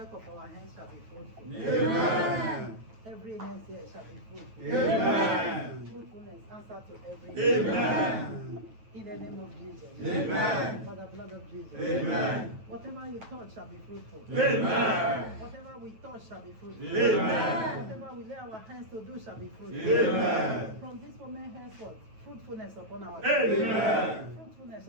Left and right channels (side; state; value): left; late; 9.2 ms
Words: of our hands shall be fruitful. Amen. Every hand here shall be fruitful. Amen. Fruitfulness answer to every Amen. in the name of Jesus. Amen. By the blood of Jesus. Amen. Whatever you touch shall be fruitful. Amen. Whatever we touch shall be fruitful. Amen. Whatever we lay our hands to do shall be fruitful. Amen. From this moment henceforth, fruitfulness upon our Amen. fruitfulness